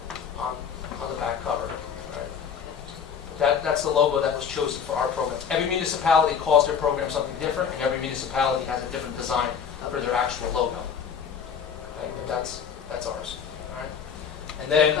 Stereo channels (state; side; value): quieter; right; 7.1 dB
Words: on the back cover. Right? That's the logo that was chosen for our program. Every municipality calls their program something different, and every municipality has a different design for their actual logo. Okay? But that's ours. All right? And then